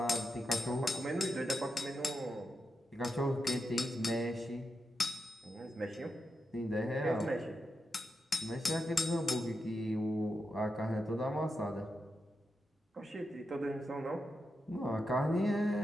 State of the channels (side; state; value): both; normal; correlation 0.87